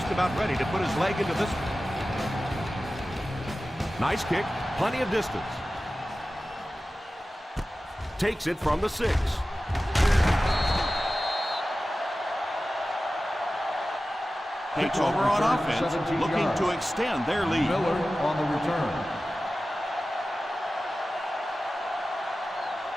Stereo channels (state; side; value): normal; both; correlation 0.95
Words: about ready to put his leg into this one. Nice kick, plenty of distance. Takes it from the 6. Takes over on offense, looking to extend their lead. Miller on the return.